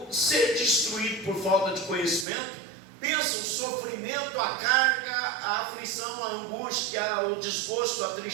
ser destruído por falta de conhecimento, pensa o sofrimento, a carga, a aflição, a angústia, o desgosto, a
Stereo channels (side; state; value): left; drops out; at 2.2 s